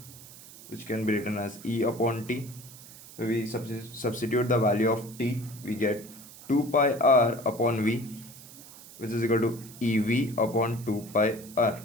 which can be written as E upon T. When we substitute the value of T, we get 2 pi r upon V, which is equal to EV upon 2 pi r.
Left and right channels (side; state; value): right; noise; hiss, 18 dB below the sound